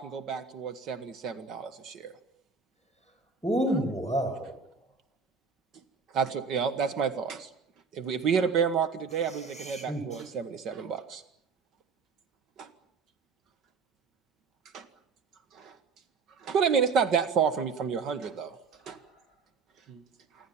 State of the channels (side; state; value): left; quieter; 5.1 dB